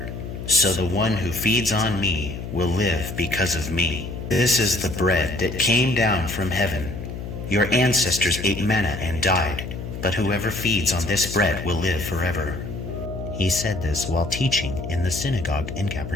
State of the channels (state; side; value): noise; left; hum, 8 dB below the sound